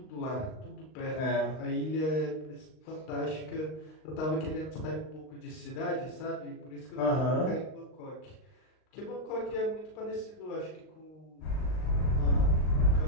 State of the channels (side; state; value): right; late; 39 ms